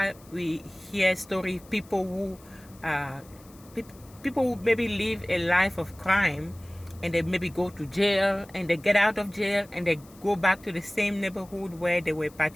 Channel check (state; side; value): noise; left; hiss, 25 dB below the sound